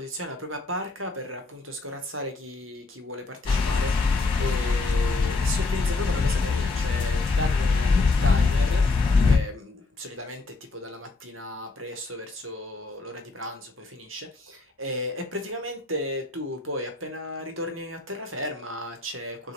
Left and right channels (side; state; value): right; quieter; 3.5 dB